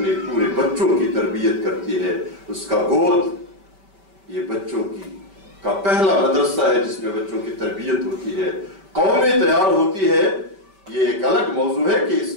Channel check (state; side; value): late; left; 5.2 ms